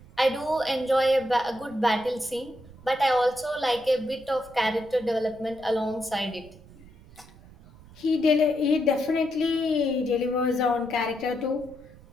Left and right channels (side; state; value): right; noise; rumble, 22 dB below the sound